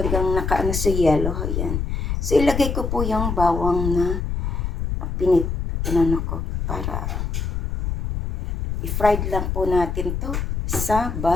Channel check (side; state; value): left; noise; rumble, 2 dB below the sound